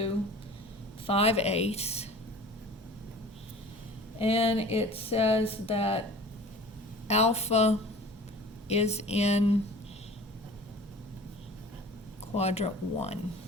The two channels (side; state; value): both; normal; correlation 0.43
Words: 5/8, and it says that alpha is in quadrant 1.